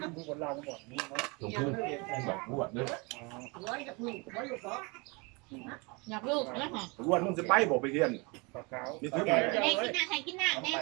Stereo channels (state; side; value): quieter; left; 28.6 dB